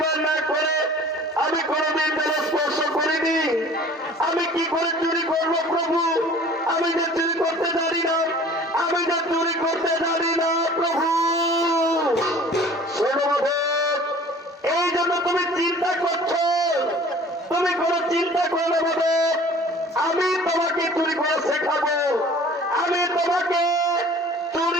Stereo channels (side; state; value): both; normal; correlation 0.47